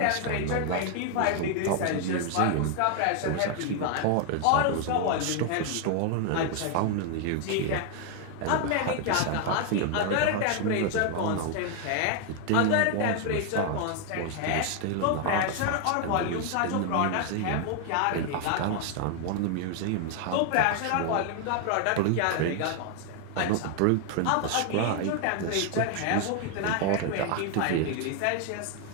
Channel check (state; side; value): different; both; correlation 0.00